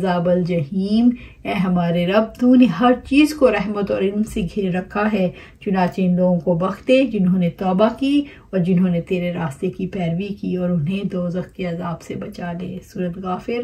जहीम। ए हमारे रब, तूने हर चीज़ को रहमत और इल्म से घेर रखा है, चुनाचे इन लोगों को बख्श दे जिन्होंने तौबा की और जिन्होंने तेरे रास्ते की पैरवी की और उन्हें दोज़ख के अज़ाब से बचा ले। सूरत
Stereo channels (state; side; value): identical; both; correlation 1.00